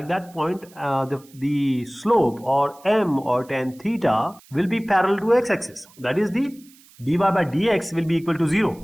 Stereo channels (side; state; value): right; noise; hiss, 26 dB below the sound